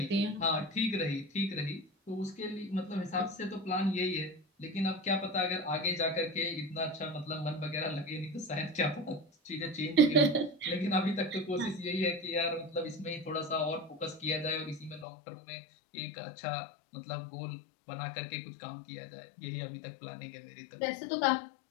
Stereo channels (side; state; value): right; drops out; at 15.1 s